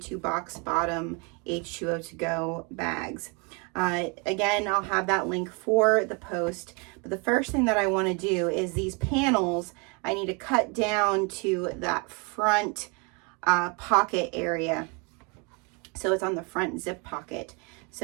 box bottom H2O2GO bags. Again, I'll have that link for the post. But the first thing that I want to do is these panels, I need to cut down to that front pocket area. So it's on the front zip pocket.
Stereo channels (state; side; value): quieter; left; 32.3 dB